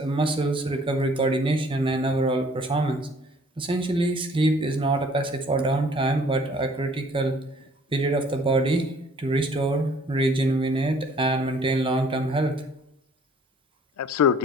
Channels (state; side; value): normal; both; correlation 0.56